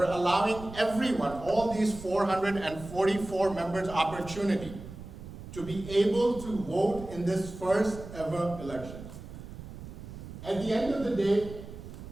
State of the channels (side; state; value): right; noise; rumble, 13 dB below the sound